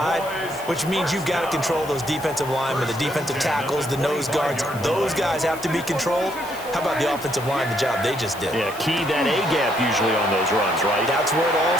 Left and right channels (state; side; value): noise; left; hiss, 17 dB below the sound